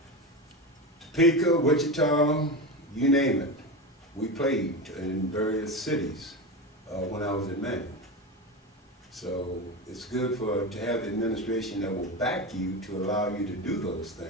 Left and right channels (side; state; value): both; normal; correlation 0.20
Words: Topeka, Wichita, you name it. We played in various cities when I was at Manual. So it's good to have the administration that will back you to allow you to do those